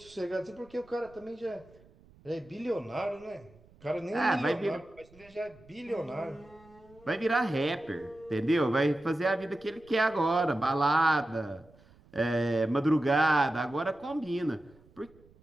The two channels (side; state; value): right; noise; rumble, 27 dB below the sound